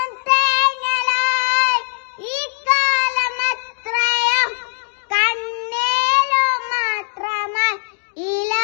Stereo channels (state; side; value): silent; right; digital silence